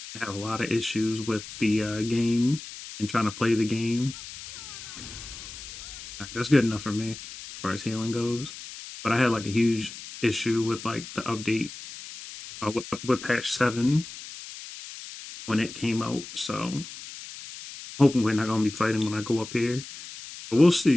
I had a lot of issues with the game and trying to play the game. All right, that's good enough for me as far as healing goes. But I had like a huge issue with like the update with patch 7 when it came out. So hoping we're not gonna be fighting when I go up here, but we'll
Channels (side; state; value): left; noise; hiss, 13 dB below the sound